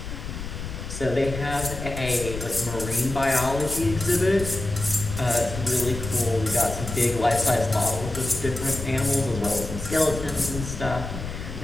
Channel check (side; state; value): left; noise; rumble, 8 dB below the sound